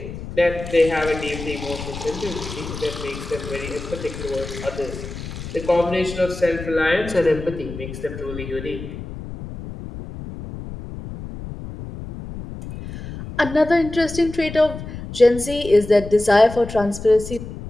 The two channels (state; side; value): noise; left; rumble, 10 dB below the sound